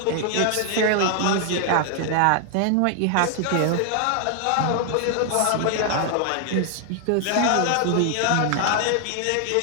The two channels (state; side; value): different; both; correlation 0.00